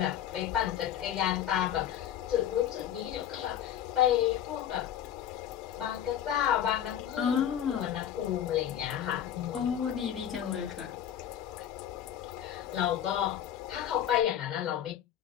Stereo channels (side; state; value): right; quieter; 10.3 dB